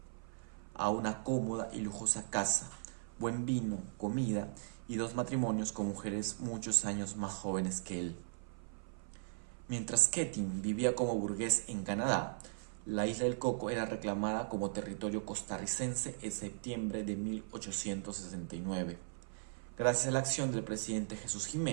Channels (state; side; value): silent; left; 52 dB below the other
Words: a una cómoda y lujosa casa, buen vino, comida y 2 matrimonios con mujeres muchos años más jóvenes que él. Mientras Keating vivía como burgués en Canadá, la isla del Coco era reclamada como territorio costarricense en septiembre de 1869, gracias a la acción del presidente Jesús